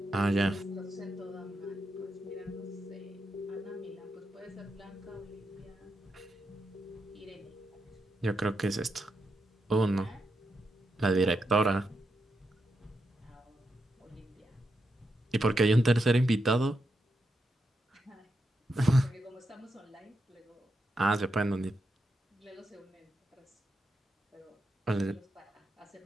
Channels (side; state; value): both; normal; correlation 0.84